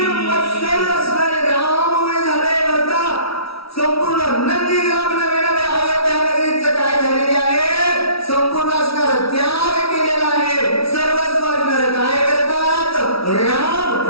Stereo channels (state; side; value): late; right; 0.76 ms